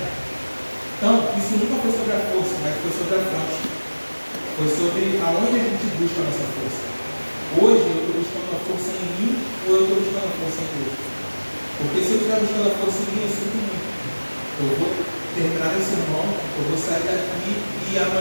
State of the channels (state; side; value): inverted; both; correlation -1.00